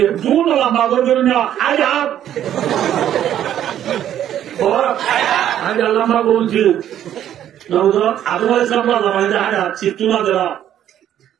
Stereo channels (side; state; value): left; quieter; 10.9 dB